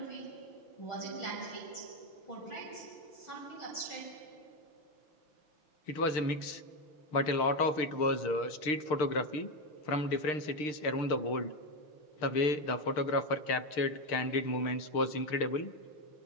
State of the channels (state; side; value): late; right; 6.6 ms